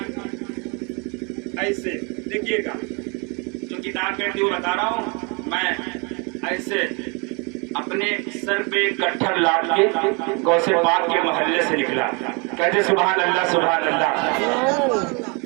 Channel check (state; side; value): quieter; left; 32.4 dB